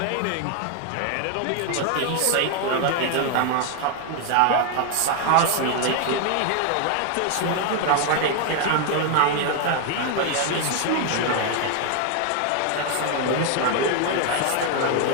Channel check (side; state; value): both; different; correlation 0.00